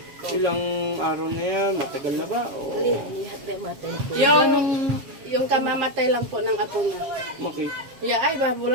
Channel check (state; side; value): late; left; 7.3 ms